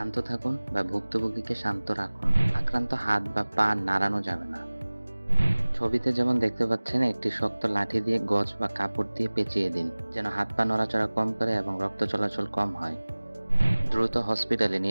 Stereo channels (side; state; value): both; inverted; correlation -1.00